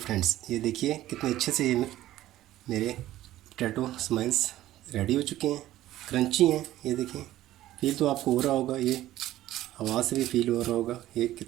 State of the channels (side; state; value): left; quieter; 14.5 dB